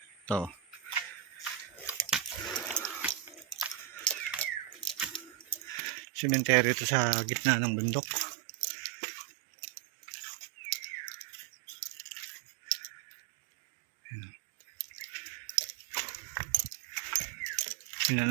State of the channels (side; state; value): left; drops out; at 5.8 s